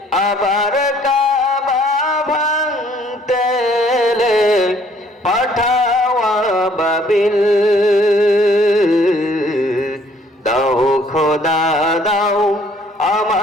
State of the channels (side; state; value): both; normal; correlation 0.61